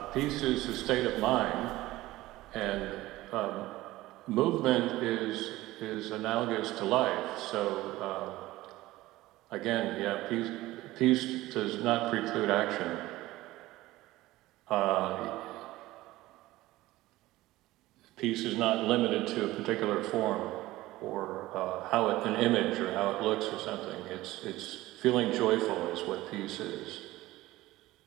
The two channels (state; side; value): quieter; left; 17.5 dB